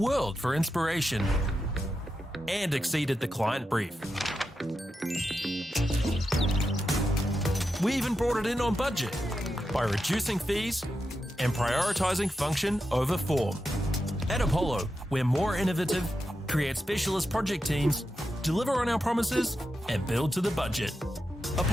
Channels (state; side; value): normal; both; correlation 0.88